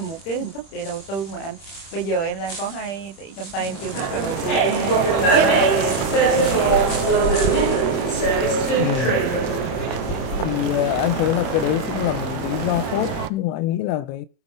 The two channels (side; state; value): right; late; 30 ms